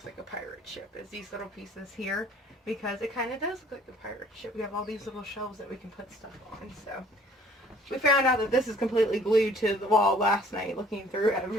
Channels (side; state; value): both; normal; correlation 0.55